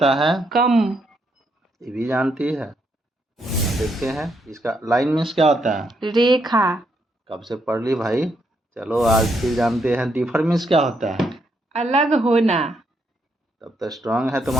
है? कम। ये भी जानती है। अब देखते हैं इसका। लाइन मीन्स क्या होता है? रेखा। कब से पढ़ ली भाई। चलो आज फिर जानते हैं। डिफर मीन्स क्या होता है? अलग होना। तब तो स्ट्रांग है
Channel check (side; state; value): both; normal; correlation 0.77